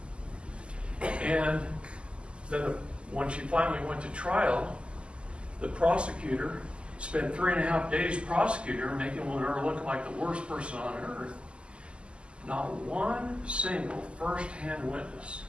And then when she finally went to trial, the prosecutor spent 3.5 days prosecuting her, making her look like the worst person on earth. Not one single first-hand witness,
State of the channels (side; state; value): left; late; 0.052 ms